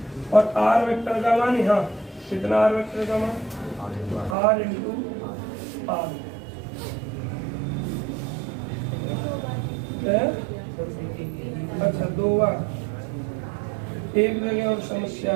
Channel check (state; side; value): drops out; left; at 4.4 s